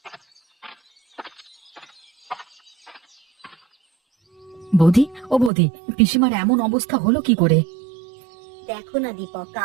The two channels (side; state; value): left; drops out; at 5.5 s